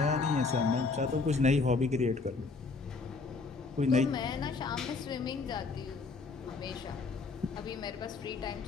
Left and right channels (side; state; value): right; quieter; 4.2 dB